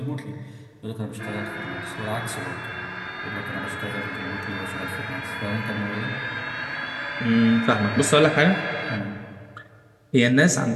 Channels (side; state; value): both; identical; correlation 1.00